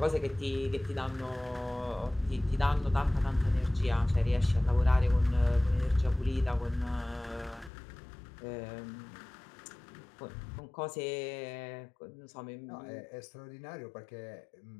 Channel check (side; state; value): right; drops out; at 7.7 s